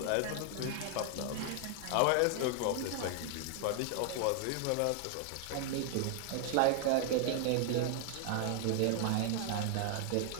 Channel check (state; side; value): different; both; correlation 0.00